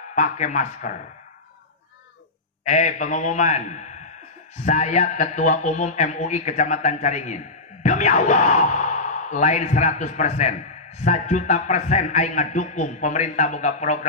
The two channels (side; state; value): right; quieter; 3.1 dB